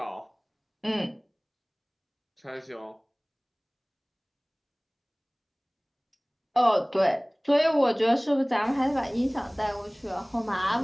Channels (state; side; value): identical; both; correlation 1.00